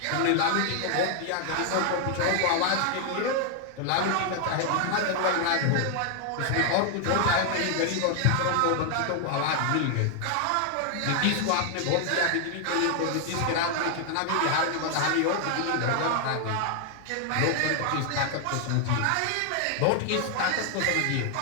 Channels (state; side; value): different; both; correlation 0.00